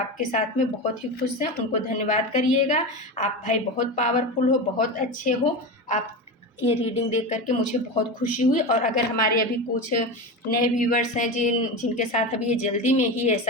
साथ में बहुत ही खुश हैं, उनको धन्यवाद करिएगा। आप भाई बहुत पावरफुल हो, बहुत अच्छे हो। आप ये रीडिंग देख करके मुझे बहुत खुशी हुई। और अगर हमारे अभी कुछ नए व्यूवर्स हैं जिनके साथ अभी ये जल्दी में ही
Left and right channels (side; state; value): both; normal; correlation 0.22